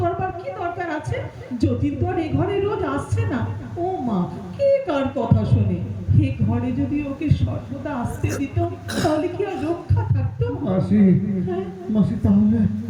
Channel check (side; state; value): both; identical; correlation 1.00